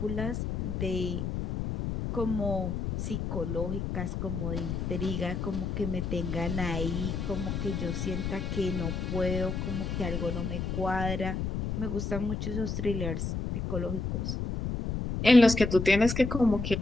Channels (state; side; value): noise; left; rumble, 3 dB below the sound